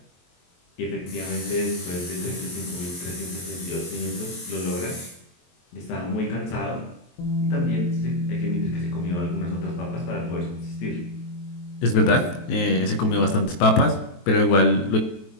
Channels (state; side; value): late; right; 23 ms